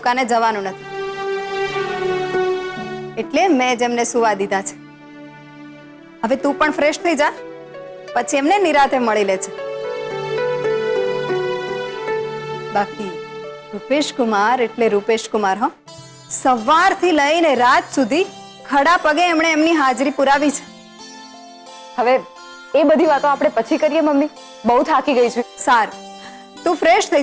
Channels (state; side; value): identical; both; correlation 1.00